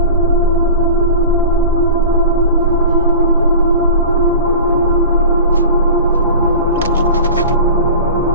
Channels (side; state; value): both; inverted; correlation -0.35